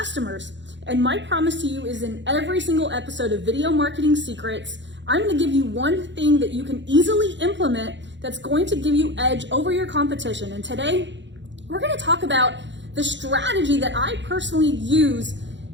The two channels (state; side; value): late; left; 0.53 ms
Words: And my promise to you is in every single episode of Video Marketing Secrets, I'm going to give you one thing that you can easily implement that's going to give you edge over your competition. And today, we're going to talk about the strategy that I personally use